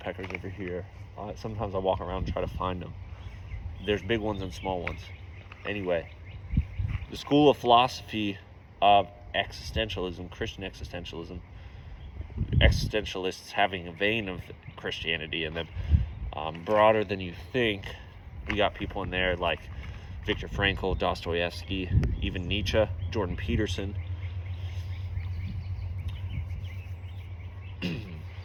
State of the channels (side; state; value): both; identical; correlation 1.00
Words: over here. Sometimes I walk around and try to find them. There's big ones and small ones. Anyway, the school of philosophy of existentialism, Christian existentialism, existentialists having a vein of Christianity in them, broader than you think. We got people in there like Viktor Frankl, Dostoevsky, even Nietzsche, Jordan Peterson.